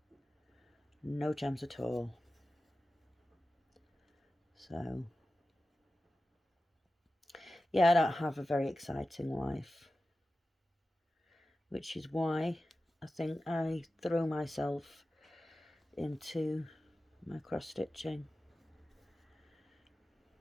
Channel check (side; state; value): both; normal; correlation 0.94